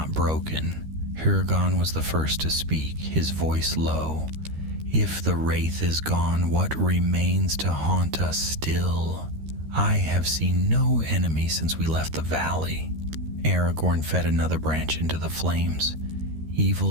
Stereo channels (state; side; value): late; left; 13 ms